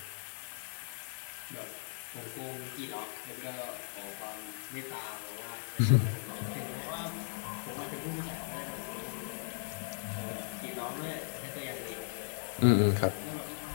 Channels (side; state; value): right; silent; digital silence